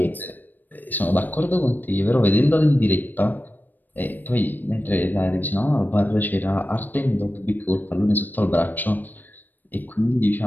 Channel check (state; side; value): late; right; 0.088 ms